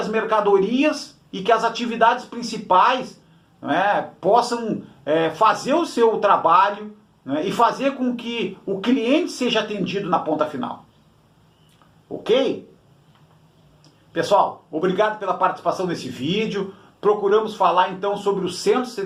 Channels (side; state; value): both; identical; correlation 1.00